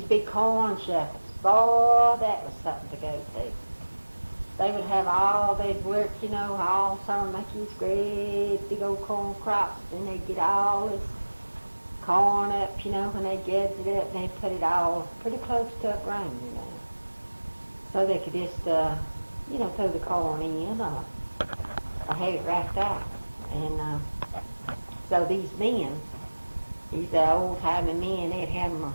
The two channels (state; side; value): inverted; both; correlation -1.00